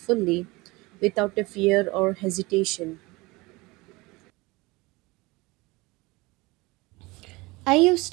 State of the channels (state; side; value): quieter; left; 23.2 dB